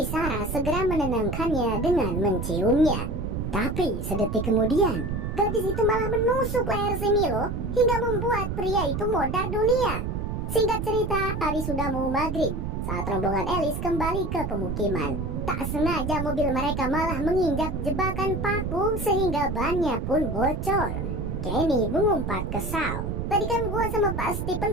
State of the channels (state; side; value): noise; right; rumble, 3 dB below the sound